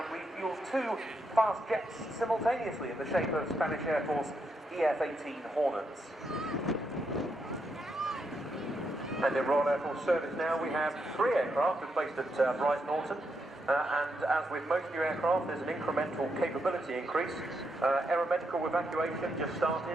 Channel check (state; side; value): normal; both; correlation 0.81